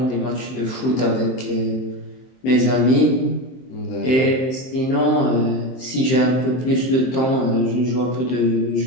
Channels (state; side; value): late; right; 23 ms